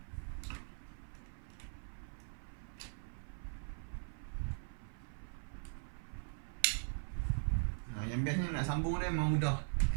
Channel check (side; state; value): left; silent; 51 dB below the other